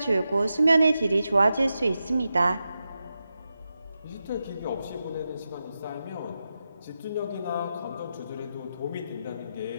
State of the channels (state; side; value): inverted; both; correlation -0.89